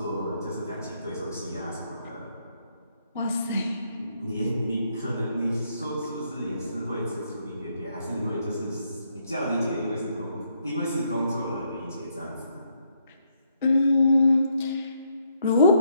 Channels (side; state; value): both; inverted; correlation -0.74